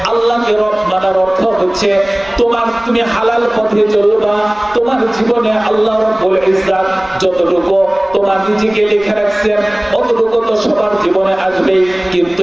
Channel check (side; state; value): right; noise; rumble, 25 dB below the sound